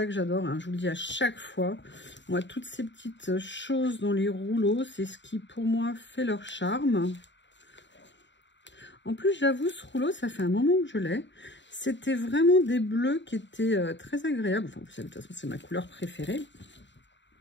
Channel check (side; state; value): right; late; 0.53 ms